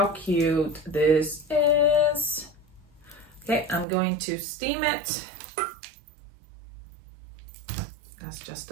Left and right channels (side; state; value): left; drops out; at 3.9 s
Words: cute this is. Okay, I'm going to steam it. That's just